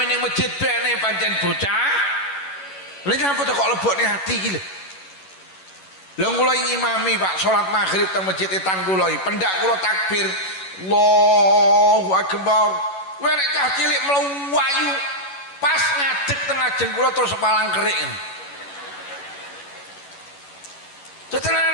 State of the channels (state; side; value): late; right; 11 ms